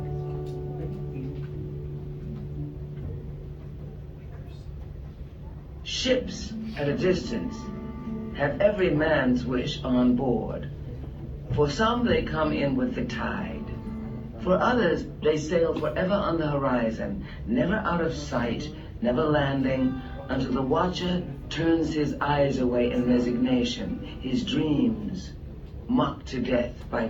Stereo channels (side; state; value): both; identical; correlation 1.00